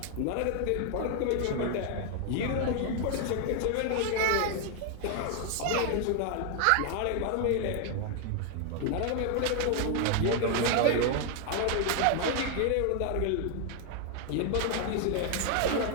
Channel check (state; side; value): different; both; correlation 0.00